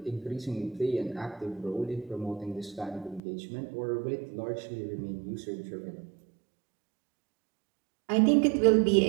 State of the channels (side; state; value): left; drops out; at 3.2 s